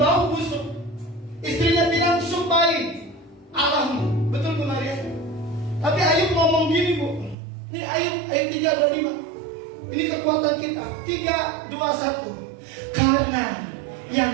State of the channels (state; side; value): drops out; left; at 7.4 s